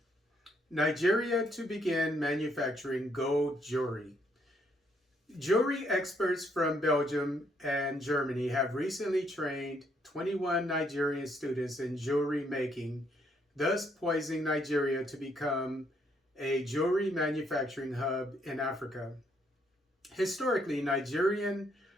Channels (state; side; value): normal; both; correlation 0.71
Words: Nigeria to begin manufacturing gold jewelry. Jewelry experts from Belgium and Germany have recently trained 21 Nigerian students in jewelry making, thus poising Nigeria to become a jewelry manufacturing hub in Africa. Historically, Nigerian